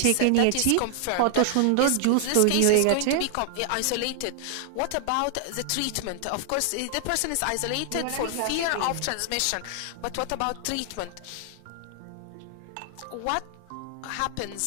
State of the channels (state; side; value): different; both; correlation 0.00